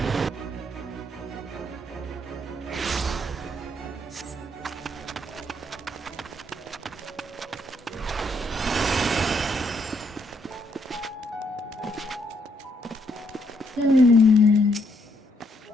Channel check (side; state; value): both; normal; correlation 0.73